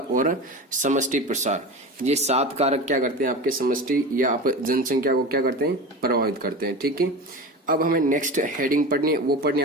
समष्टि प्रसार। ये 7 कारक क्या करते हैं, आपके समष्टि या आप जनसंख्या को क्या करते हैं, प्रभावित करते हैं। ठीक है। अब हमें नेक्स्ट हेडिंग पढ़नी है, वो पढ़नी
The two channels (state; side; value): normal; both; correlation 0.29